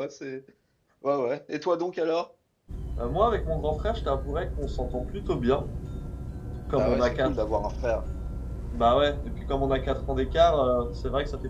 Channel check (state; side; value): identical; both; correlation 1.00